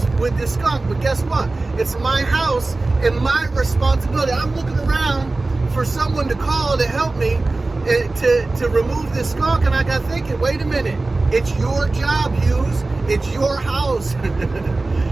skunk. But guess what? It's my house and my responsibility. I'm looking around for someone to call to help me to remove this skunk, and I got thinking, wait a minute. It's your job, Hughes. It's your house.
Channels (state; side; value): quieter; left; 3.2 dB